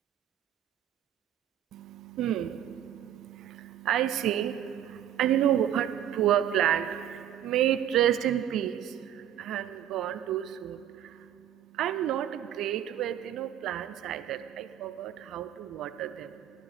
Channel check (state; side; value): quieter; left; 10.7 dB